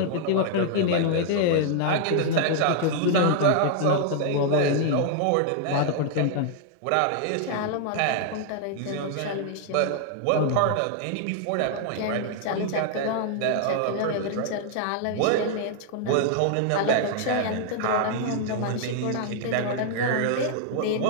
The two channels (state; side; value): different; both; correlation 0.00